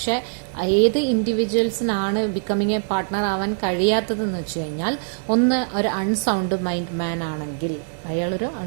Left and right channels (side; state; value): left; silent; digital silence